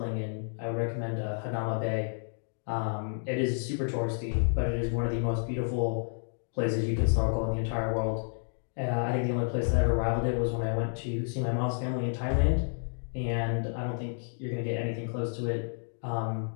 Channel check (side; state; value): right; silent; digital silence